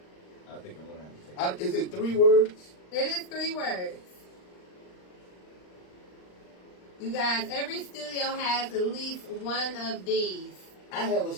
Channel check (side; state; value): right; late; 39 ms